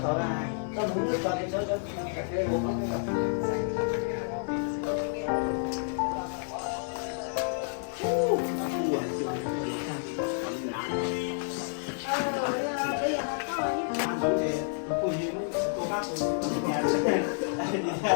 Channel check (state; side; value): silent; right; 58 dB below the other